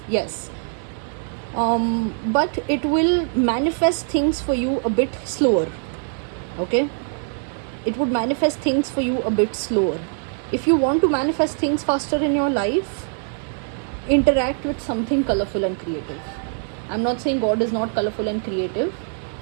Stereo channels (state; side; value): silent; left; 56 dB below the other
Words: yes, but it will manifest things for you a bit slower. Okay, it would manifest things for you a bit slower. If you want to manifest things faster in your life, interact with something colorful and creative. I'm not saying God is not colorful and creative,